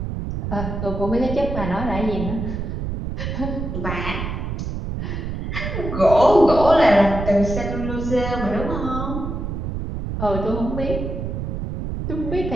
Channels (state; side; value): noise; right; rumble, 4 dB below the sound